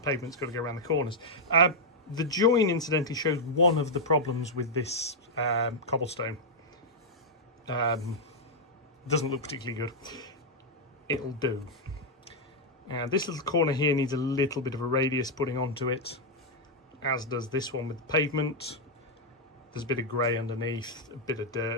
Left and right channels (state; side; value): normal; both; correlation -0.02